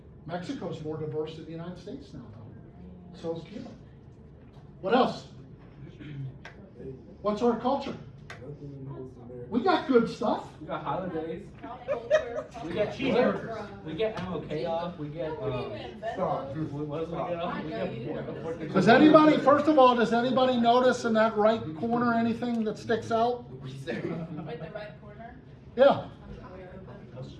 Mexico's more diverse than the United States now, though. So is Cuba. What else? What's our culture? We got good stuff. We got holidays. We get cheeseburgers. We get MLK off. We get, Stop. what else we get off? We get Does anybody, first of all, does anybody notice in that right corner anything that sticks out? Wait, the right corner? Yeah.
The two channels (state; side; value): identical; both; correlation 1.00